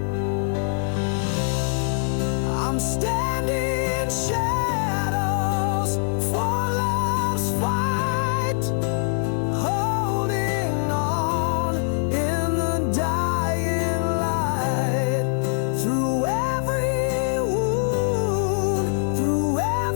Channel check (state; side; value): silent; right; 63 dB below the other